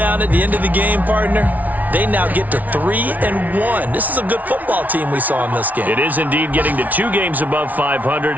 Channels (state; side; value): late; left; 0.075 ms